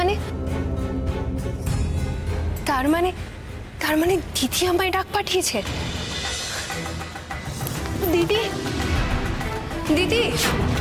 তার মানে দিদি আমায় ডাক পাঠিয়েছে। দিদি, দিদি,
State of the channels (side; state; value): both; identical; correlation 1.00